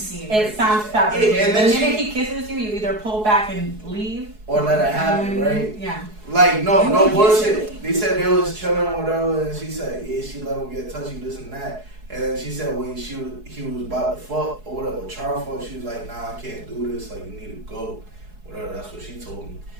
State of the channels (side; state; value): left; late; 4.7 ms